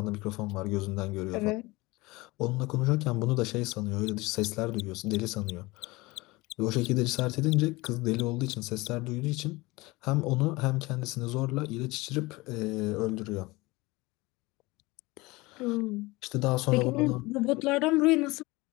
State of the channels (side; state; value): right; quieter; 22.3 dB